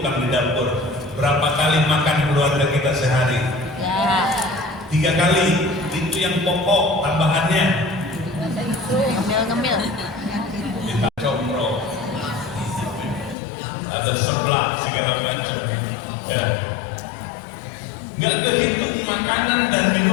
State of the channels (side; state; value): right; drops out; at 13.4 s